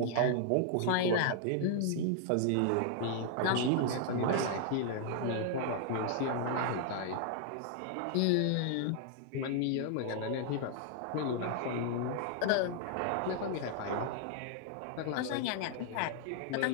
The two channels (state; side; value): different; both; correlation -0.01